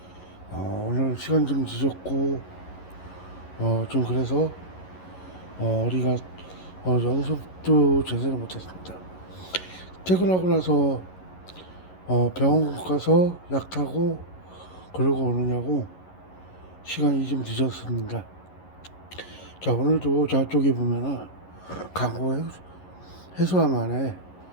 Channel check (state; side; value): late; right; 11 ms